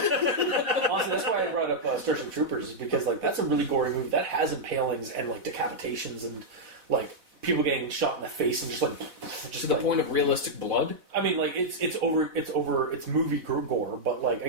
Honestly, that's why I brought up Starship Troopers, is because like that's a really gory movie that has impalings and like decapitations and like people getting shot in the face and just To the like, point of realistic blood? I mean, like it's movie gore, but like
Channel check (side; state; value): left; late; 4.0 ms